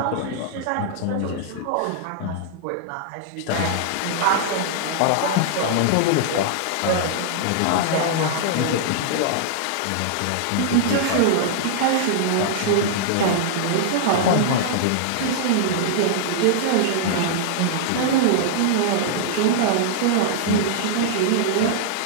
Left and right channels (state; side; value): different; both; correlation -0.01